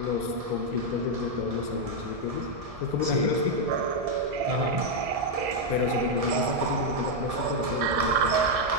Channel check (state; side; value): late; left; 1.7 ms